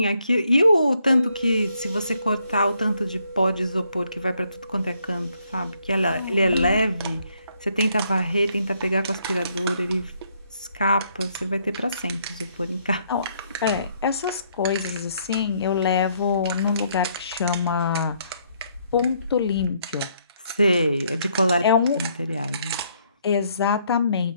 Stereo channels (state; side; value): inverted; both; correlation -0.71